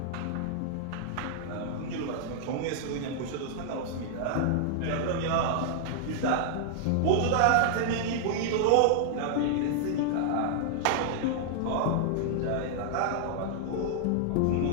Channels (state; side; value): different; both; correlation -0.01